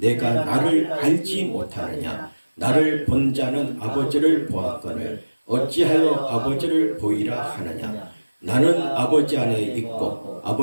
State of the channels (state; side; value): inverted; both; correlation -1.00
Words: 나를 알지 못하느냐. 나를 본 자는 아버지를 보았거늘 어찌하여 아버지를 보이라 하느냐. 나는 아버지 안에 있고